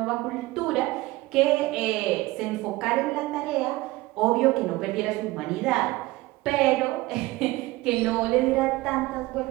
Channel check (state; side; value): quieter; left; 19.5 dB